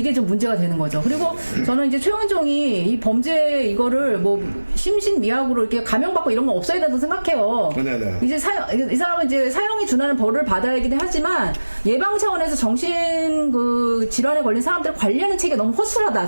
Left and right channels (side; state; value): both; inverted; correlation -1.00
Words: 좀 문제가 되는 거죠. 그리고 저는 이제 최원종이 이 범죄 이거를 뭐 심신미약으로 이렇게 감형받고 이런 건 없어야 된다고 생각해요. 네네. 이제 이 사람은 이제 사형이 준하는 벌을 받아야긴 하지만 예방 차원에서 정신 그 질환에 걸린 사람들을 관리하는 체계가 너무 허술하다.